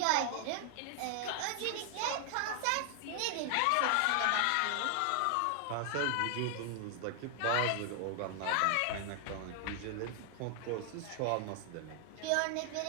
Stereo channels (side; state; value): both; different; correlation 0.00